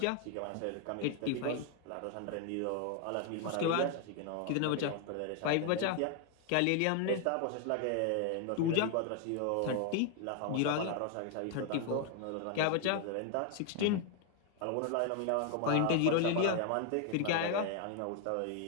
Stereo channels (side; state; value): both; different; correlation 0.00